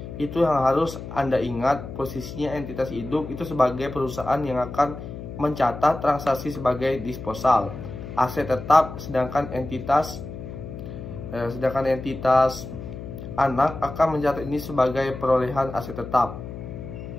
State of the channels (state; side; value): noise; left; hum, 10 dB below the sound